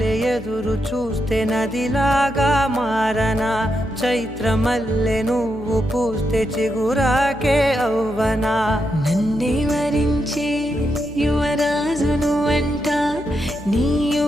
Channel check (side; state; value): left; noise; hum, 16 dB below the sound